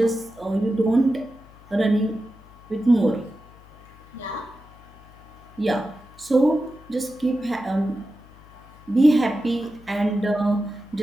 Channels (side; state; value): left; noise; hum, 23 dB below the sound